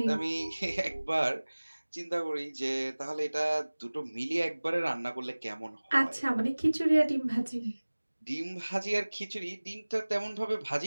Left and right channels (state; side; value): inverted; both; correlation -1.00